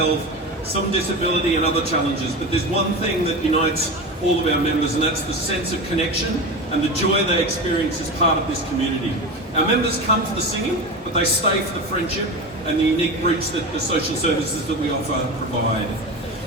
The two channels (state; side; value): normal; both; correlation 0.25